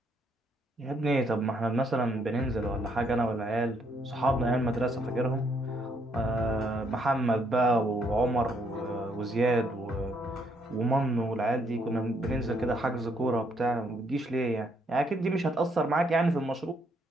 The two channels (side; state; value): both; normal; correlation 0.71